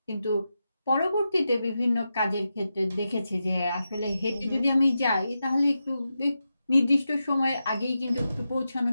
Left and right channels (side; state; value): both; inverted; correlation -0.89